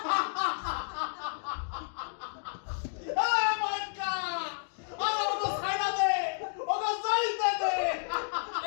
এই মাইকা আমার ওকে ছাইড়া দে ওকে যাইতে দে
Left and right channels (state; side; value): silent; right; digital silence